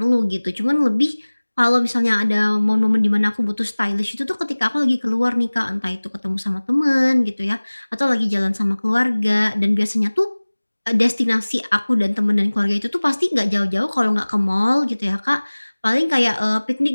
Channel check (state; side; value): inverted; both; correlation -1.00